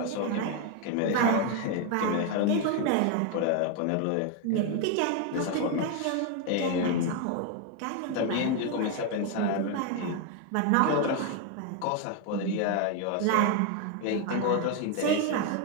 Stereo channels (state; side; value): different; both; correlation 0.01